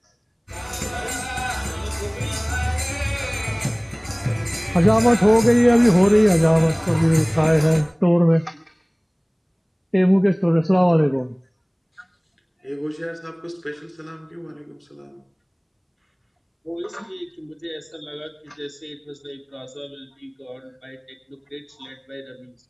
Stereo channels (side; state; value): both; identical; correlation 1.00